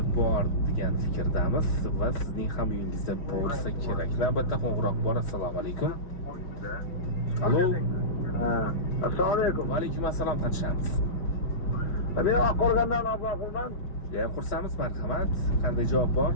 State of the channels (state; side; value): late; right; 5.1 ms